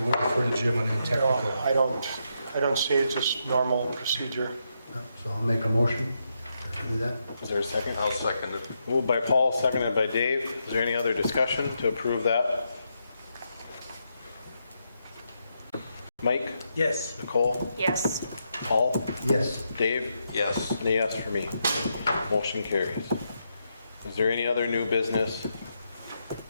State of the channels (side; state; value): both; inverted; correlation -0.82